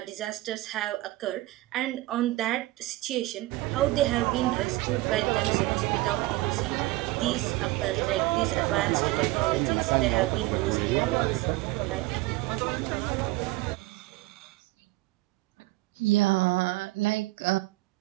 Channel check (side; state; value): left; quieter; 19.2 dB